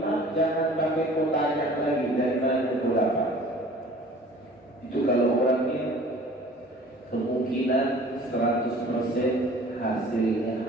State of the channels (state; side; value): normal; both; correlation 0.47